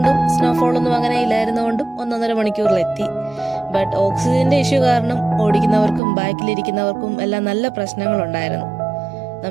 സ്നോഫോൾ ഒന്നും അങ്ങനെ ഇല്ലായിരുന്നുകൊണ്ടും 1.5 മണിക്കൂറിലെത്തി. ബട്ട് ഓക്സിജന്റെ ഇഷ്യൂ കാരണം ഓടിക്കുന്നവർക്കും ബാക്കിലിരിക്കുന്നവർക്കും എല്ലാം നല്ല പ്രശ്നങ്ങളുണ്ടായിരുന്നു.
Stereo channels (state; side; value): drops out; left; at 6.0 s